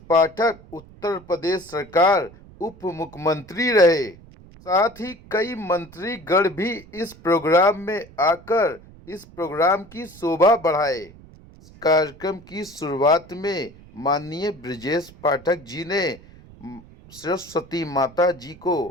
पाठक उत्तर प्रदेश सरकार उप मुख्यमंत्री रहे। साथ ही कई मंत्रीगण भी इस प्रोग्राम में आकर इस प्रोग्राम की शोभा बढ़ाए। इस कार्यक्रम की शुरुआत में माननीय ब्रजेश पाठक जी ने सरस्वती माता जी को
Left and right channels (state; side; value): noise; right; rumble, 22 dB below the sound